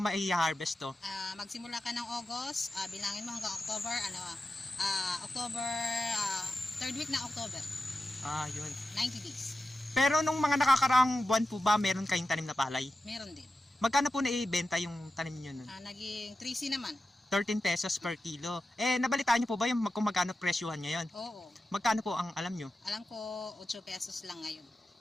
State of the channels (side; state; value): both; normal; correlation 0.92